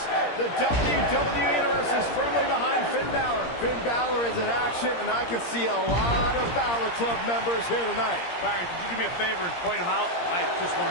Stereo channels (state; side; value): late; right; 17 ms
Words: the WWE Universe is firmly behind Finn Balor. Finn Balor is in action, and I can see a lot of Balor Club members here tonight. Byron, could you do me a favor and point him out? I just